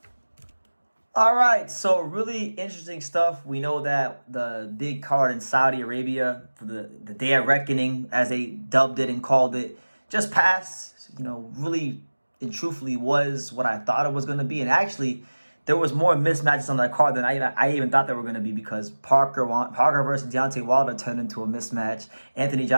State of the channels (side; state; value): both; inverted; correlation -1.00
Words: All right, so really interesting stuff. We know that the big card in Saudi Arabia for the Day of Reckoning, as they dubbed it and called it, just passed. Really and truthfully was what I thought it was going to be. And actually, there was more mismatches on that card than I even thought there were going to be, because Parker versus Deontay Wilder turned into a mismatch. Anthony